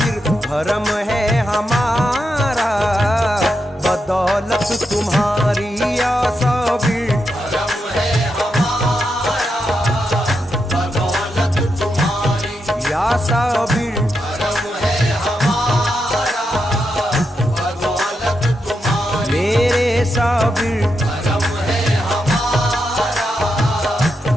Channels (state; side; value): normal; both; correlation 0.84